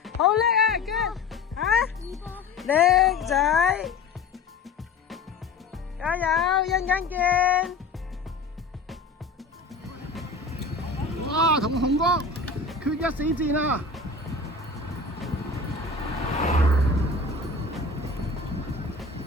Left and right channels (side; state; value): right; quieter; 3.9 dB